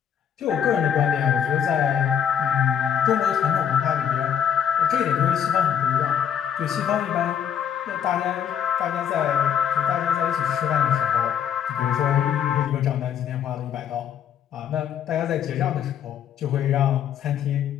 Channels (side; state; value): right; quieter; 8.6 dB